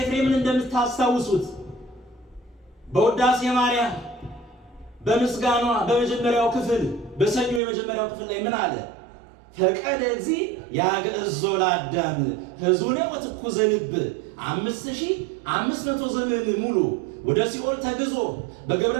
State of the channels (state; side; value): drops out; left; at 7.6 s